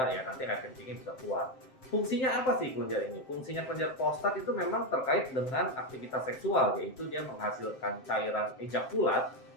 ya nanti air kencingnya bisa keluar. Fungsinya apa sih kelenjar ini? Fungsinya kelenjar prostat itu memang terkait dengan aktivitas seksual, yaitu dia menghasilkan cairan ejakulat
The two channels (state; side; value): late; right; 7.7 ms